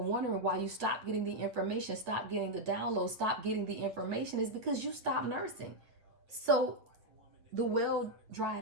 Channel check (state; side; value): late; left; 9.1 ms